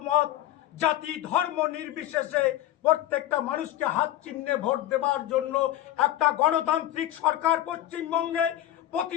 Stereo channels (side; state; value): right; quieter; 13.5 dB